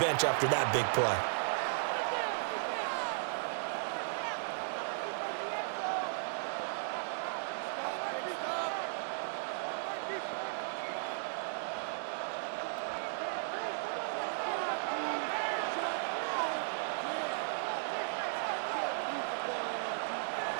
after that big play.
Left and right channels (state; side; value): silent; left; digital silence